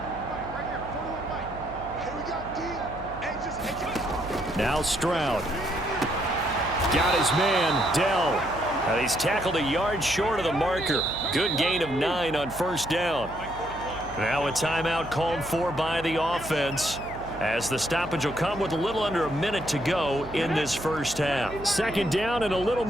Now Stroud. Got his man, Dell. And he's tackled a yard short of the marker. Good gain of 9 on first down. Now a timeout called for by the offense, as the stoppage will come with a little under a minute to go in this first half. Second down and a little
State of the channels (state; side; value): noise; right; hum, 15 dB below the sound